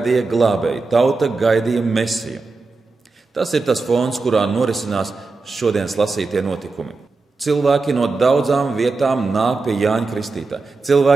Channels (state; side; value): quieter; left; 3.9 dB